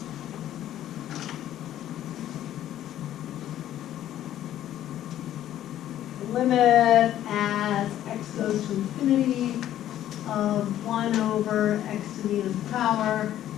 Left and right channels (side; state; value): right; quieter; 12.2 dB